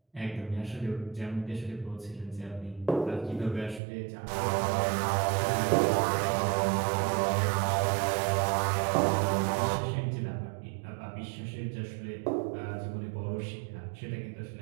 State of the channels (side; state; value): left; drops out; at 3.8 s